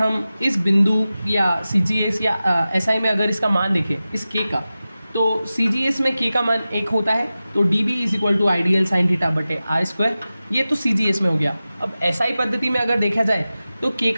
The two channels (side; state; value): both; inverted; correlation -0.95